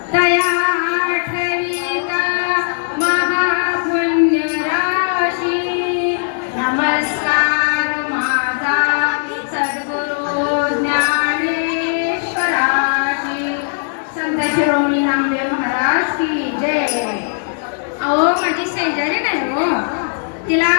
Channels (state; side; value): silent; right; digital silence